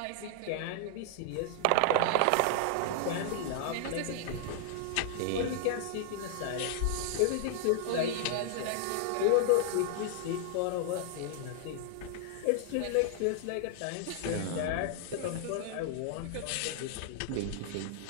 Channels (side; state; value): both; different; correlation -0.01